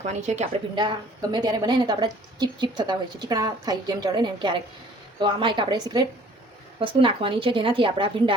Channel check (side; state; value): both; normal; correlation 0.54